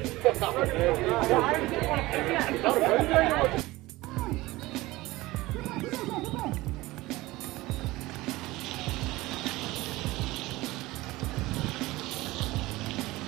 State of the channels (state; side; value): quieter; left; 19.4 dB